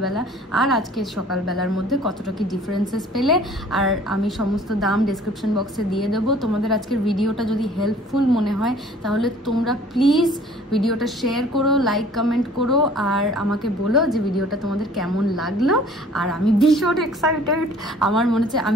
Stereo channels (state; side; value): normal; both; correlation 0.51